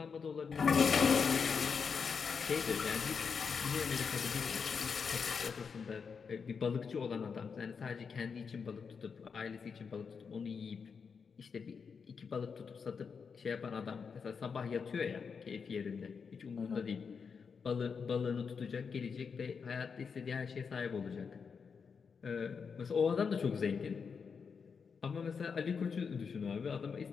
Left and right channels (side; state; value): right; quieter; 5.9 dB